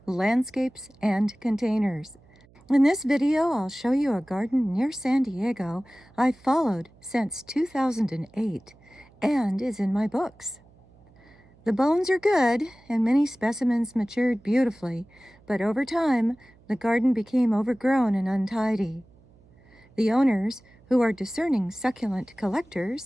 landscapes, and containers. In this video, I'll show you a garden near San Diego I've followed since 2008 and is in my books. The bones are good, and many specimens matured beautifully, but over time, the garden became overgrown and untidy. The owners, who are discerning succulent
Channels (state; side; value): noise; right; hum, 28 dB below the sound